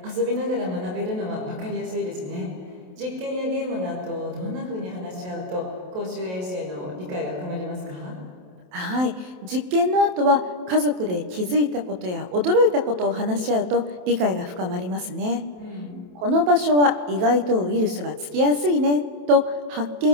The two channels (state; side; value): late; left; 27 ms